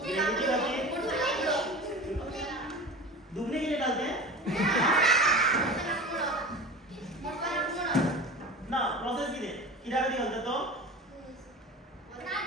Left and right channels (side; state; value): both; normal; correlation 0.33